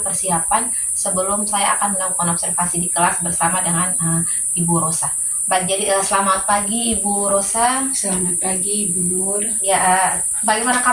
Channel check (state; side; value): identical; both; correlation 1.00